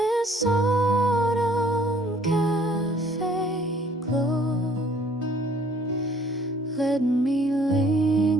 autumn cafe glow, let me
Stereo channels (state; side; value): normal; both; correlation 0.58